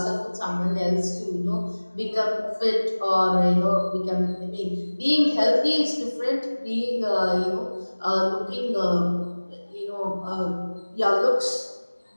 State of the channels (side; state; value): both; inverted; correlation -1.00